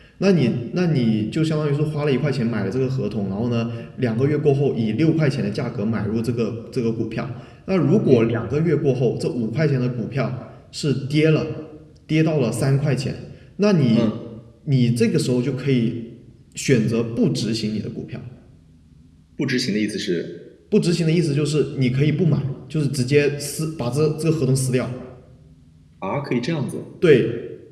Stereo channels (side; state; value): both; identical; correlation 1.00